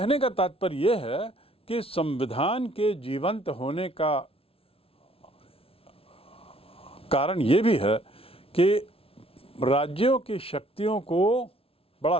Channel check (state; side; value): late; right; 0.27 ms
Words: का तात्पर्य यह है कि संविधान के जीवंत होने का कारण ये भी है कि राज्यों की शक्तियों को बड़ा